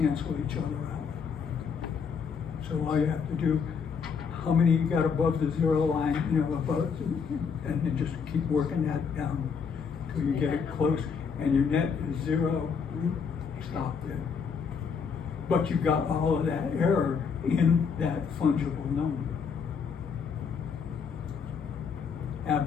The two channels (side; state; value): right; quieter; 6.1 dB